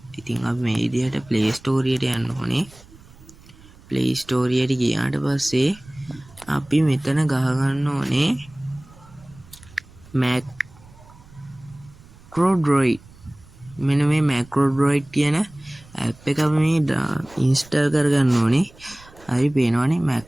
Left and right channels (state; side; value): noise; right; rumble, 23 dB below the sound